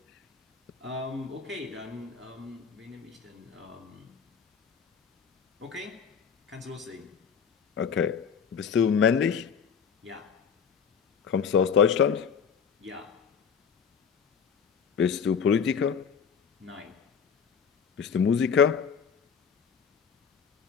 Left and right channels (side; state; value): right; quieter; 6.8 dB